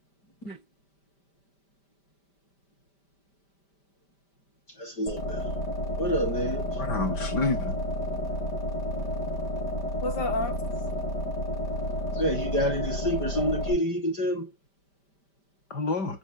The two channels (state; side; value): late; right; 5.1 ms